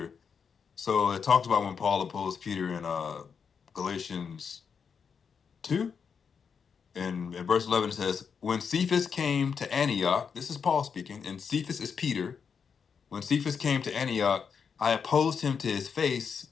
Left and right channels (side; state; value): right; quieter; 6.4 dB